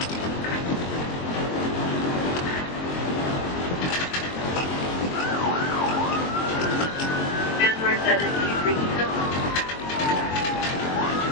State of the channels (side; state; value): right; late; 22 ms